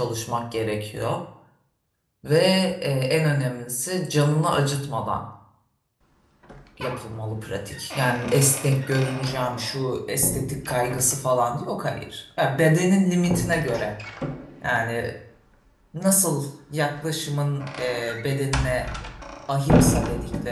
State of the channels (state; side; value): identical; both; correlation 1.00